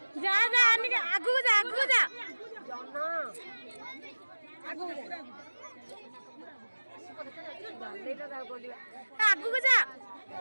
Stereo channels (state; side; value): inverted; both; correlation -1.00